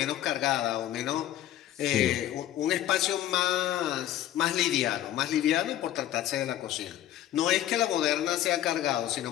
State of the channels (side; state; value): right; quieter; 12.5 dB